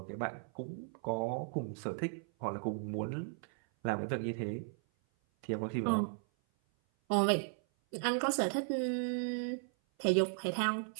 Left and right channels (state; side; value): silent; left; 54 dB below the other